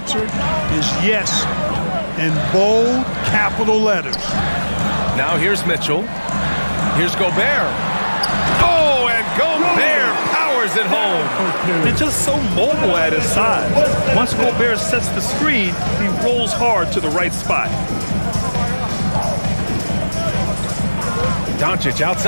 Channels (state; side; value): inverted; both; correlation -1.00